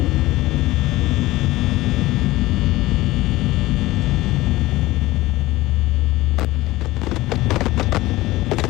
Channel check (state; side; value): quieter; right; 18.2 dB